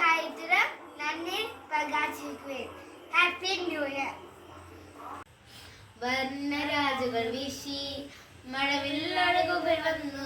കാര്യത്തിലും നന്ദി പ്രകാശിക്കുവേ. Happy new year. വർണ്ണരാജുകൾ വീശി മഴവില്ലഴകുകൾ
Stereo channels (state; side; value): identical; both; correlation 1.00